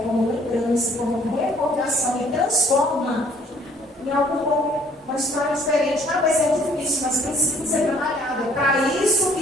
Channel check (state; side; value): normal; both; correlation 0.60